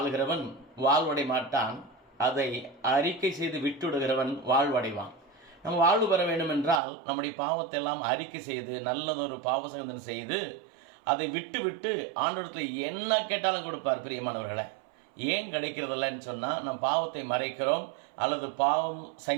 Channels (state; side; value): drops out; left; at 6.8 s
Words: வாழ்வடை மாட்டான், அதை அறிக்கை செய்து விட்டுவிடுகிறவன் வாழ்வடைவான். நம்ம வாழ்வு பெற வேண்டும் என்றால் நம்முடைய பாவத்தை எல்லாம் அறிக்கை செய்து நல்லதொரு பாவசங்கதனை செய்து அதை விட்டு விட்டு ஆண்டவரிடத்தில் என்ன கேட்டாலும் கொடுப்பார். பிரியமானவர்களை, ஏன் கிடைக்கிறதில்லன்னு சொன்னால், நம்ம பாவத்தை மறைக்கிறோம், அல்லது பாவம்